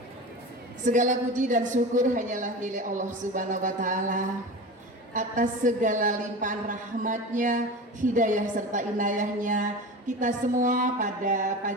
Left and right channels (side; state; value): both; normal; correlation 0.30